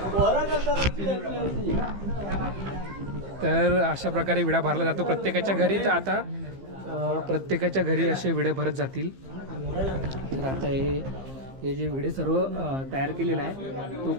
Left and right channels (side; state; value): left; late; 15 ms